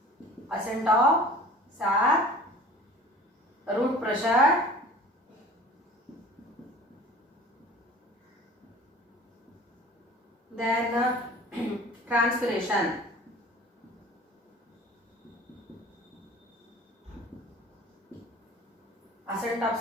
of sap, root pressure, then transpiration. Ascent of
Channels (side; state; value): both; normal; correlation 0.44